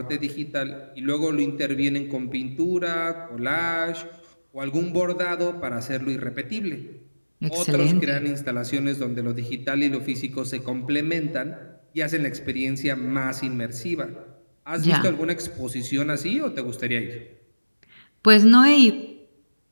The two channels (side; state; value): both; inverted; correlation -1.00